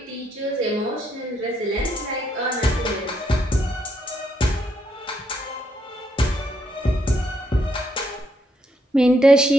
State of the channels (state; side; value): normal; both; correlation 0.76